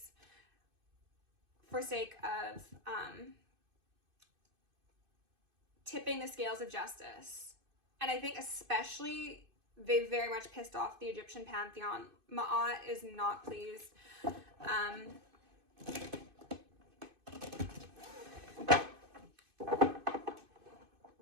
for sake of tipping the scales of justice. And I think especially they very much pissed off the Egyptian pantheon. Ma'at is not pleased.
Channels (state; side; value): late; left; 2.5 ms